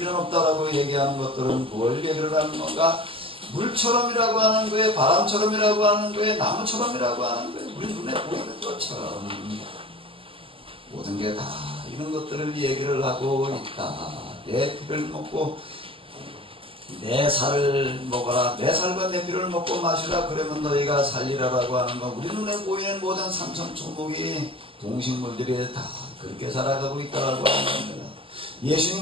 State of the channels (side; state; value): left; late; 0.26 ms